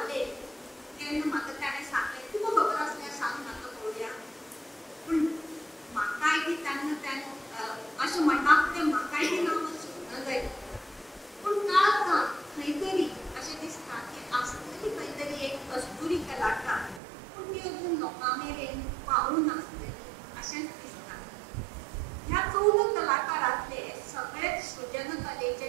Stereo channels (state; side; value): drops out; left; at 17.0 s